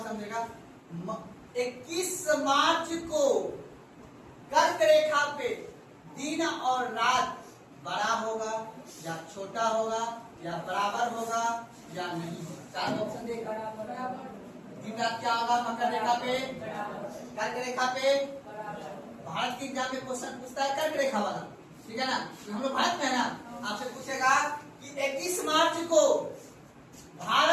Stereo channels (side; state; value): both; identical; correlation 1.00